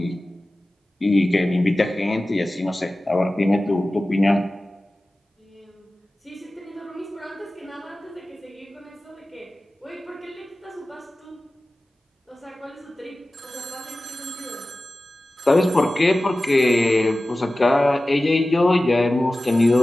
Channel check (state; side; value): normal; both; correlation 0.96